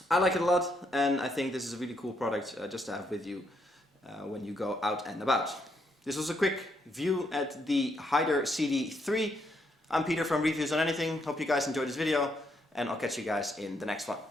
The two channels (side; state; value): both; normal; correlation 0.76